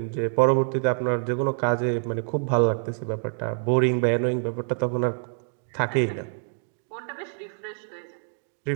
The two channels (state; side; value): silent; left; digital silence